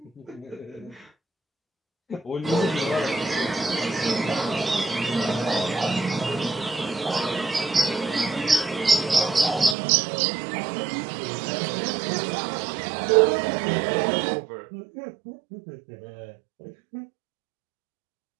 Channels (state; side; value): drops out; left; at 9.8 s